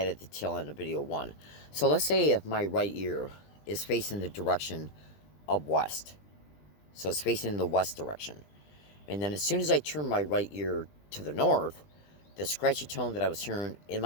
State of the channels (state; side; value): late; right; 20 ms